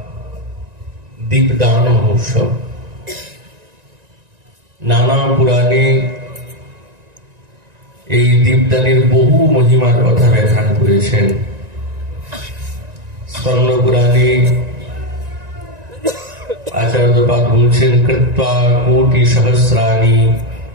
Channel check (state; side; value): late; left; 1.9 ms